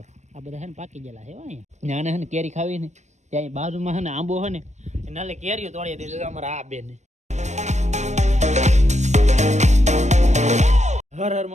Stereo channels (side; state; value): left; late; 0.34 ms